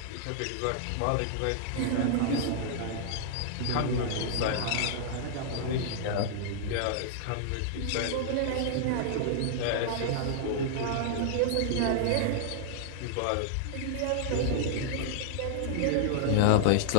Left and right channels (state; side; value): different; both; correlation -0.01